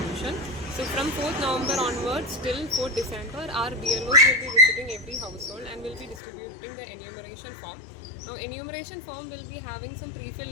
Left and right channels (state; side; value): drops out; right; at 6.2 s